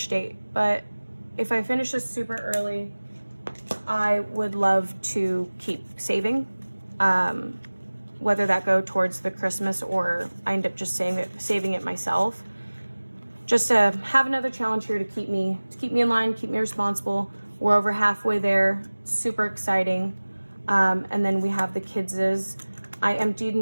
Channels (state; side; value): inverted; both; correlation -1.00